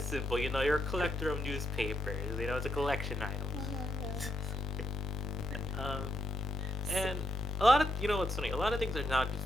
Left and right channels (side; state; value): both; normal; correlation 0.79